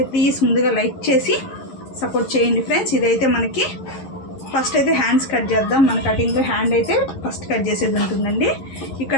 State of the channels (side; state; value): right; late; 11 ms